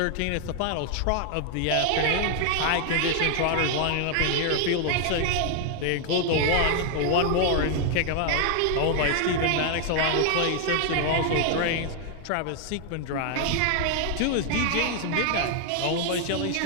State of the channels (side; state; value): both; different; correlation 0.00